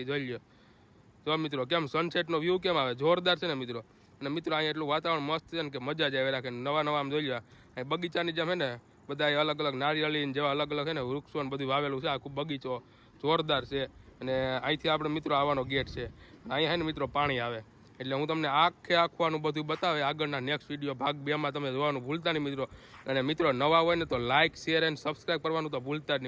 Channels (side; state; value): both; identical; correlation 1.00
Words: જોઈ લો જો મિત્રો કેમ સનસેટનો વ્યૂ કેમ આવે, જોરદાર છે ને મિત્રો. અને મિત્રો અહીંયા એટલું વાતાવરણ મસ્ત છે ને કે મજા જ આવે રાખે. નવા આમ જોઈ લો અહીં બગીચાની જેમ છે ને બધા અલગ અલગ નારિયેળી જેવા અલગ અલગ છે ને વૃક્ષો ને બધું વાવેલું છે. આખું બગીચો જોરદાર છે. અને અહીંથી આપણે મિત્રો આવવાનો ગેટ છે. અહીંયા છે ને મિત્રો પાણી આવે. એટલે હું તમને આખું બધું બતાવે આગળના નેક્સ્ટ વિડીયો ભાગ 2માં તમે જોવાનું ભૂલતા નહીં મિત્રો. અને મિત્રો નવા હોય ને તો લાઇક, શેર એન્ડ સબસ્ક્રાઈબ કરવાનું તો ભૂલતા જ